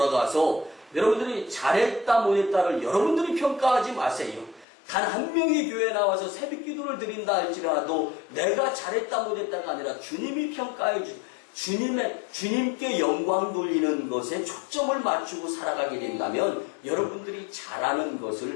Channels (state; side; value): drops out; right; at 4.7 s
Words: 여러분들이 잘했다 못했다를 여러분들이 평가하지 마세요. 단 한 명이 교회에 나와서 새벽기도를 드린다 할지라도 내가 잘했다 못했다가 아니라 주님이 평가해 주님께 영광 돌리는 것에 초점을 맞추고 살아가게 된다면 여러분들이 잘하는